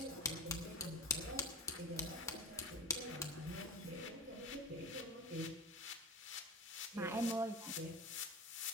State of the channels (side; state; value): both; normal; correlation 0.31